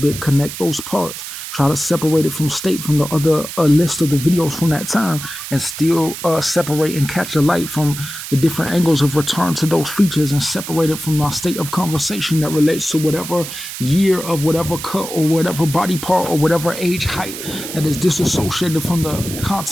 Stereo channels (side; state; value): right; noise; hiss, 9 dB below the sound